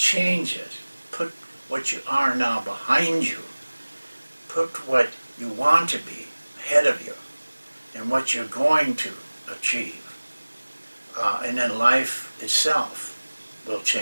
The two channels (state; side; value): inverted; both; correlation -1.00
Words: it. Put what you are now behind you. Put what you want to be ahead of you and what you're going to achieve. And then life itself will